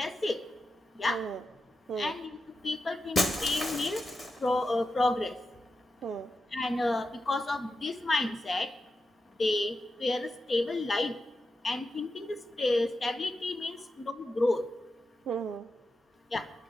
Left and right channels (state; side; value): normal; both; correlation 0.89